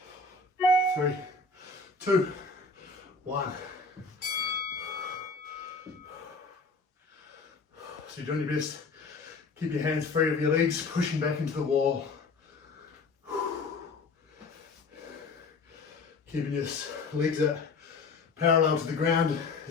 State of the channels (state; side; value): quieter; right; 4.0 dB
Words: 3, 2, 1. So you're doing your best. Keep your hands free of your legs, pushing back into the wall. Keeping your legs at parallel to the ground